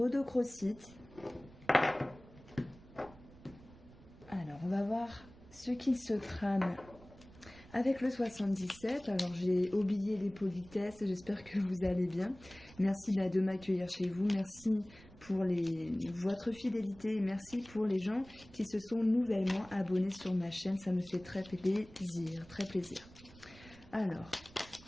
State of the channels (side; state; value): right; noise; rumble, 21 dB below the sound